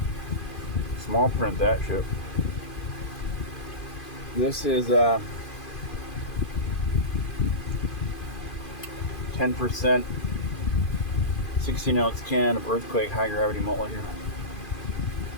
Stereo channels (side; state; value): right; late; 2.5 ms